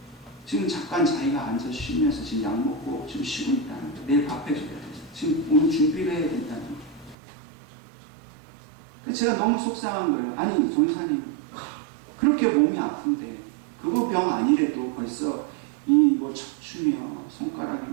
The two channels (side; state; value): left; drops out; at 7.2 s